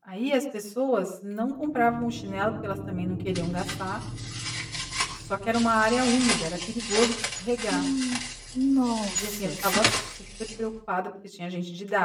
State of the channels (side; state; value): both; identical; correlation 1.00